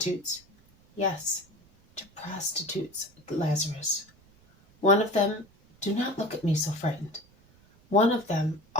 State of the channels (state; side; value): noise; right; rumble, 30 dB below the sound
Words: Yes, to prostitutes, Lazarus. One of them, do not look at me so frightened. One of them